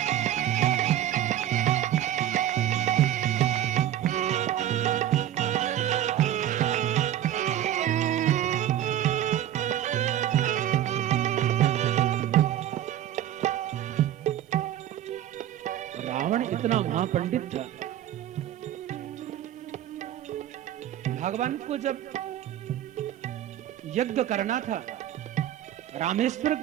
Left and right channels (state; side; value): quieter; left; 11.7 dB